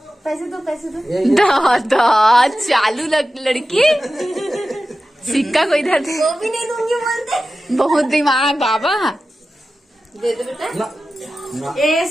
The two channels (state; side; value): normal; both; correlation 0.94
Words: पैसे दो दादा चालू लड़की सिक्का को इधर दे वो भी नहीं दूंगी बोलते बहुत दिमाग बाबा दे दो बेटा ये